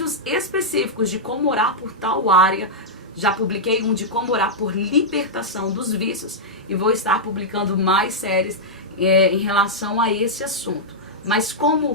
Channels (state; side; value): normal; both; correlation -0.08